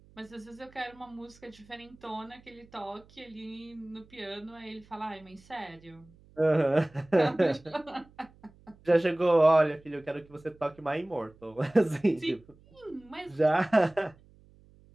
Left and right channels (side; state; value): right; noise; hum, 27 dB below the sound